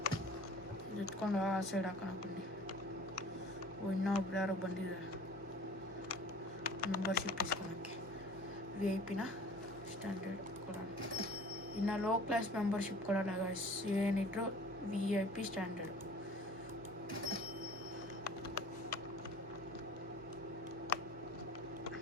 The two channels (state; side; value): normal; both; correlation 0.46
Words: ಇಟ್ಕೊಂಡು ಆ ಸೈಡ್ ಹಾಕೋಣ ಬನ್ನಿ. ಇನ್ನೊಬ್ರು ಯಾರೋ ಬಂದಿದ್ದಾರೆ ಮೆಂಬರ್ಶಿಪ್ ಇಸ್ಕೊಳಕ್ಕೆ. VIP ಸ್ಟ್ಯಾಂಡರ್ಡ್ ಕೊಡೋಣ. ಇನ್ನು ಲೋ ಕ್ಲಾಸ್ ಮೆಂಬರ್ಶಿಪ್ ಕೊಡೋಲ್ಲ ಗೈಸ್, ಏನಿದ್ರು VIP ಸ್ಟ್ಯಾಂಡರ್ಡ್.